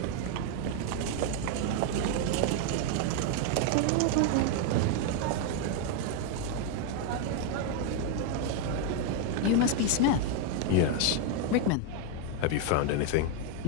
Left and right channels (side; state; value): both; different; correlation 0.01